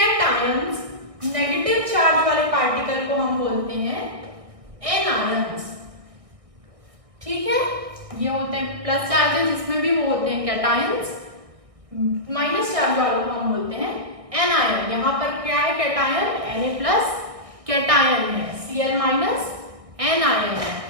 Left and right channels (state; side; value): late; left; 1.6 ms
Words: नेगेटिव चार्ज वाले पार्टिकल को हम बोलते हैं एनायंस, ठीक है। ये होते हैं प्लस चार्जेस, जिसमें भी वो होते हैं कैटायंस, माइनस चार्ज वालों को हम बोलते हैं एनायन। यहाँ पर क्या है, कैटायन Na प्लस कैटायन है, Cl माइनस एनायन है,